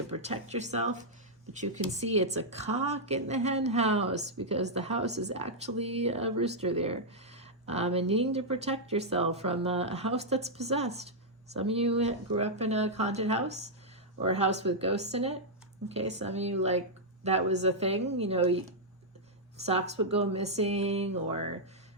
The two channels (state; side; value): normal; both; correlation -0.06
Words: protect yourself, but you can see it's a cock in the hen house because the house is actually a rooster there. And needing to protect yourself from a house that's possessed. Some of you grew up in a haunted house or a house with ghosts in it. Okay, some of you, like, that was a thing, you know, socks would go missing, or